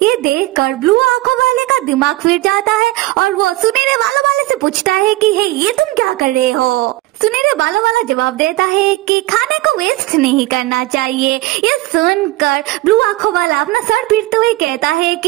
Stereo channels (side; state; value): left; quieter; 18.5 dB